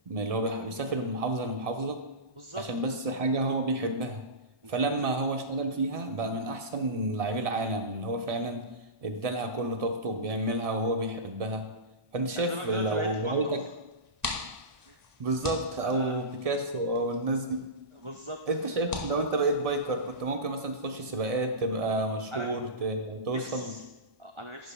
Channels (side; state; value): left; late; 1.7 ms